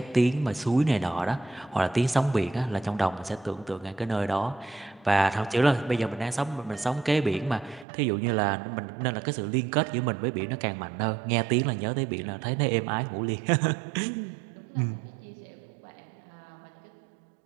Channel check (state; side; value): drops out; left; at 7.9 s